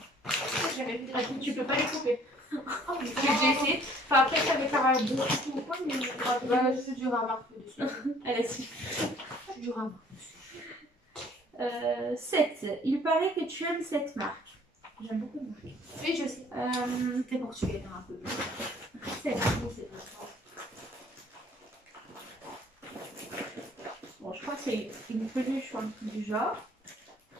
J'ai jamais vu des Tu peux pas les couper. Oh, mais J'ai déjà essayé. Enfin, après, ça avait pas beaucoup ou quoi, mais. Bah, je suis dur à marquer dessus. Elle a si. Je suis dur à marquer. 7. Il paraît que tu aimes cette marque. J'aime beaucoup de marque. Oui, je sais. T'es portugais, un peu plus. 7. C'est pas ça. Bon, je crois que c'est une peluche ou un truc du genre.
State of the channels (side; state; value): both; normal; correlation 0.57